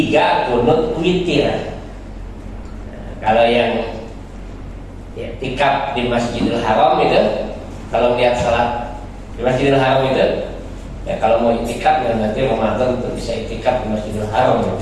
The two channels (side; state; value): both; identical; correlation 1.00